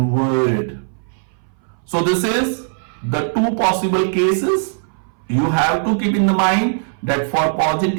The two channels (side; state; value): left; silent; 63 dB below the other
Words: So this is the two possible cases. You have to keep in the mind that for